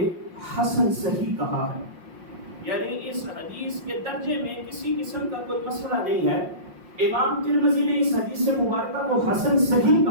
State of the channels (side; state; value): left; late; 5.6 ms